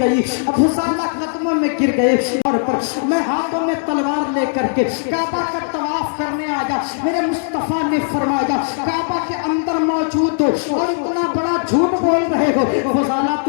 فضالہ قدموں میں گر گئے اور میں ہاتھوں میں تلوار لے کر کے کعبہ کا طواف کرنے آیا، میرے مصطفیٰ نے فرمایا کعبہ کے اندر موجود ہو اور اتنا بڑا جھوٹ بول رہے ہو، فضالہ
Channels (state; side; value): silent; right; digital silence